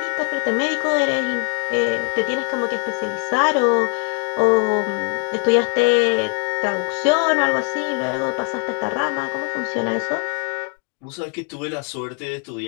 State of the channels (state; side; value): quieter; right; 38.3 dB